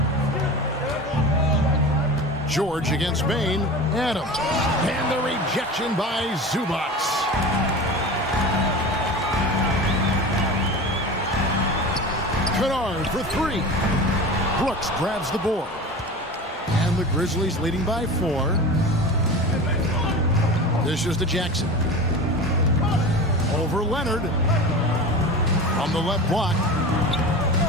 George against Bain. Adams. And the rejection by Zubac. Kennard for 3. Brooks grabs the board. And the Grizzlies leading by 4. This is to Jackson. Over Leonard. On the left block.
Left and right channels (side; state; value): both; normal; correlation 0.32